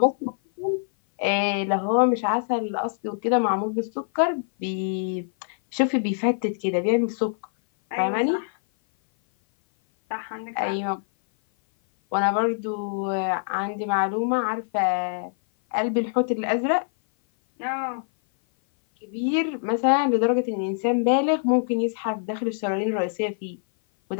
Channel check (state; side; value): silent; right; 57 dB below the other